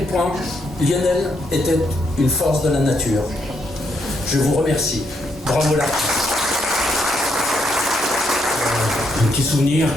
point Lionel était une force de la nature. Je vous remercie. Bravo là. Un petit souvenir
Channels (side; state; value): both; normal; correlation 0.76